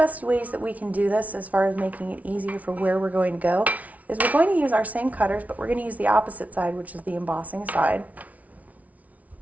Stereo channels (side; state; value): left; late; 0.070 ms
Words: ways that we can do this as far as making it easier for where we're going to go is we're going to use our same cutters, but we're going to use the opposite side, which is the embossing side.